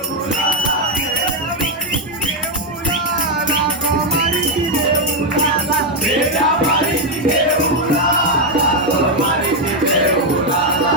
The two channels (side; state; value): both; normal; correlation 0.03